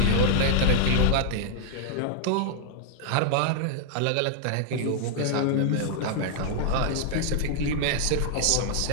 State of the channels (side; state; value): both; different; correlation -0.01